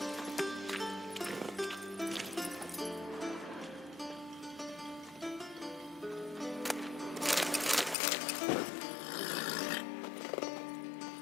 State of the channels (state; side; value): drops out; right; at 8.0 s